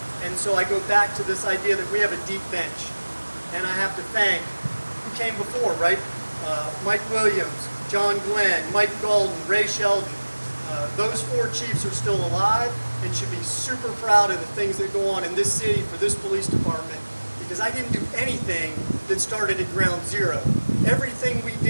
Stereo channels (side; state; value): both; inverted; correlation -1.00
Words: And so I go back to this idea that we have a deep bench. And I have to thank who came before, right? Mike Williams, John Glenn, Mike Golden, Ray Sheldon. Those 4 chiefs are still alive and should be super proud of the things that go on in this city for this police department, because I didn't do anything that started at ground zero. Everything we